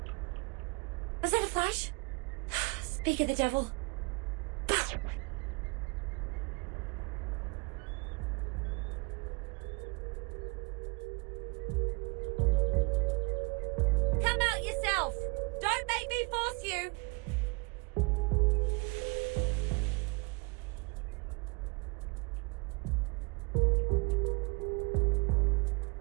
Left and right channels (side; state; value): left; quieter; 29.6 dB